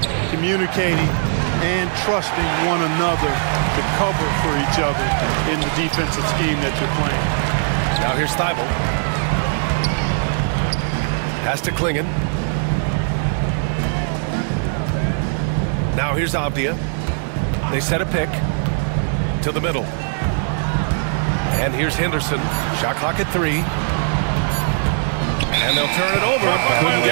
communicating and trusting one another to cover for each other in the defensive scheme that you're playing. Now here's Thibault. Pass to Klingon. Now here's Avdia. They set a pick to the middle. And here's Henderson. Shot clock at 3. And they'll turn it over. Couldn't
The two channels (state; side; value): silent; left; digital silence